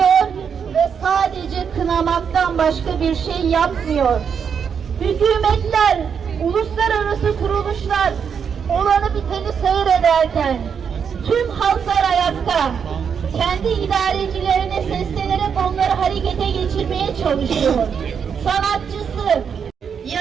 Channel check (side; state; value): left; quieter; 7.0 dB